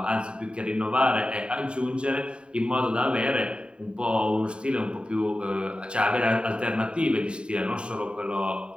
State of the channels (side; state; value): left; late; 0.053 ms